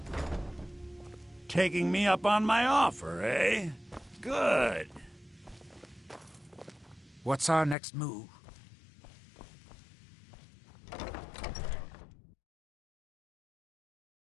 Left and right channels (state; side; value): drops out; right; at 7.8 s